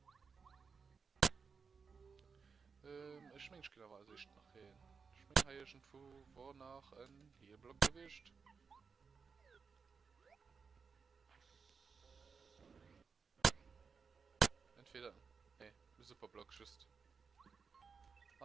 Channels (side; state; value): left; quieter; 5.4 dB